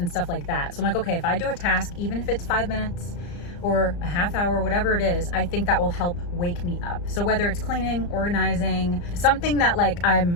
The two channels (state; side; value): late; right; 34 ms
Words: stuff like that. So I'm like, okay, if I do a task, even if it's 5 minutes or a half hour, whatever it is, I think that will help wake me up. So whether it's cleaning, organizing, something that like